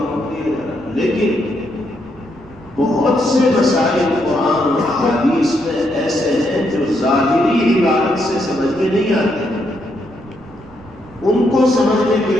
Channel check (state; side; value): noise; right; rumble, 23 dB below the sound